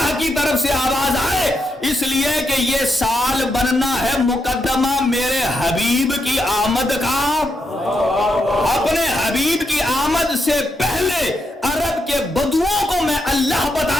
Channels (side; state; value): both; normal; correlation 0.83